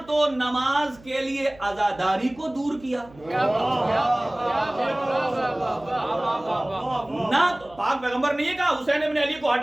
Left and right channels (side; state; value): right; noise; hum, 24 dB below the sound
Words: تو نماز کے لیے عزاداری کو دور کیا, نہ پاک پیغمبر نے یہ کہا حسین ابن علی کو